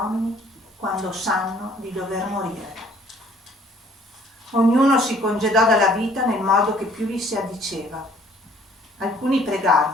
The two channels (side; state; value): both; normal; correlation 0.58